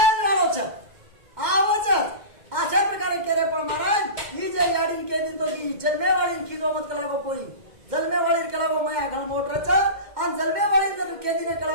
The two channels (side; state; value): left; late; 2.1 ms